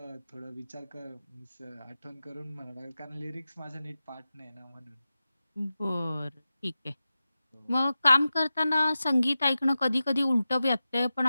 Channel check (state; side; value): inverted; both; correlation -0.94